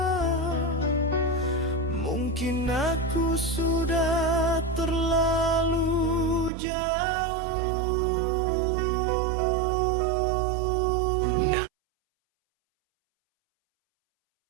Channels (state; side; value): drops out; left; at 6.5 s